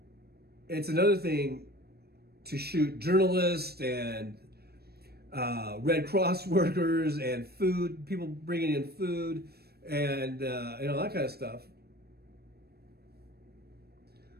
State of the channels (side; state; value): left; late; 0.46 ms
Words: It's another thing to shoot journalists and Red Cross workers and food, people bringing in food and that kind of stuff.